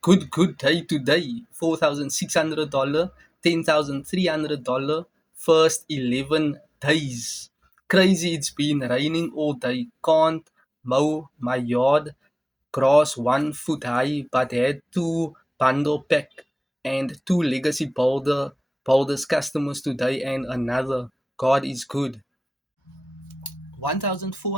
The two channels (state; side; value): normal; both; correlation 0.98